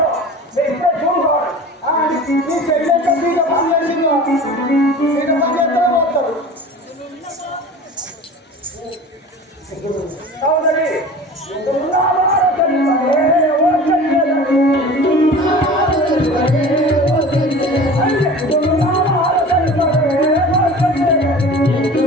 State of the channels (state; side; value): normal; both; correlation 0.39